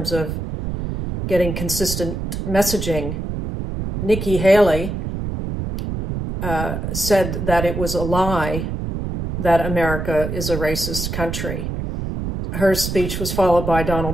of getting consistent messaging. Nikki Haley said that it was a lie that America is a racist country. Her speech was followed by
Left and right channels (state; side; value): noise; right; rumble, 4 dB below the sound